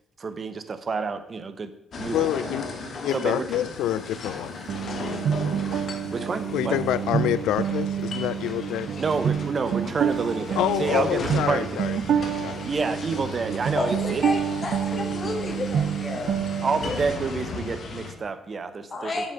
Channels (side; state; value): both; normal; correlation 0.63